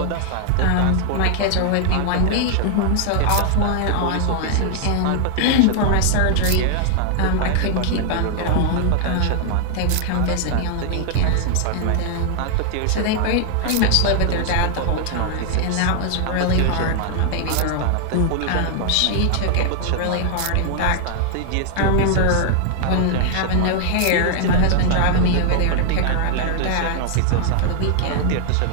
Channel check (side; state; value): both; different; correlation 0.00